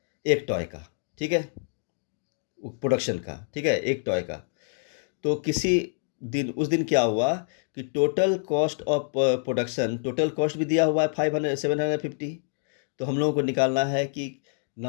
एक टॉय का, ठीक है, प्रोडक्शन का, ठीक है, एक टॉय का। तो किसी दिन, उस दिन क्या हुआ कि total cost of production, total cost भी दिया हुआ है 750। तो हम लोगों को निकालना है कि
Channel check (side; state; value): right; silent; digital silence